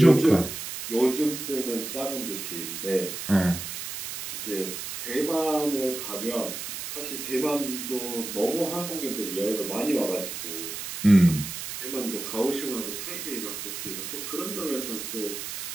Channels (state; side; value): noise; right; hiss, 7 dB below the sound